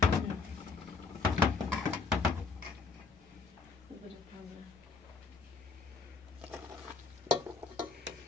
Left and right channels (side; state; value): right; quieter; 4.6 dB